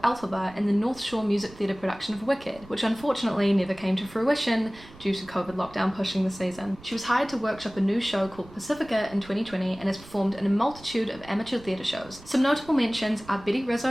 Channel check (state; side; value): noise; right; rumble, 21 dB below the sound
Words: Elphaba in the North Shore Music Theatre production of Wicked, which unfortunately never came to fruition due to COVID lockdown pushing the season. She was hired to workshop a new show called Pacifica in 2020 and has performed in a multitude of amateur theatre shows. Some notable mentions are Betty